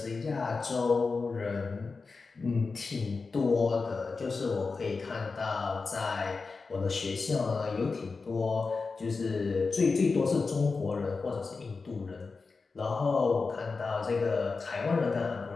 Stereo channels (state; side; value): quieter; right; 4.3 dB